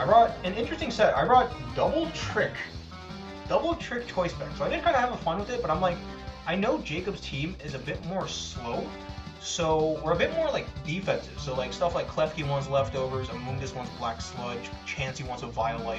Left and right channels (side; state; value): both; identical; correlation 1.00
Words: I brought an interesting set. I brought Double Trick Choice Spec. So I did kind of have fun with it, but I'm like, I know Jacob's team is a bit more slow, so we're a bit more like defensive. So like stuff like Klefki wants leftovers, Amoonguss wants Black Sludge, Chansey wants a